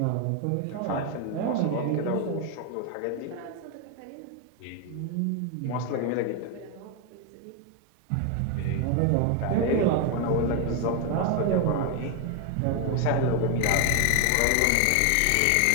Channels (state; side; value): different; both; correlation 0.01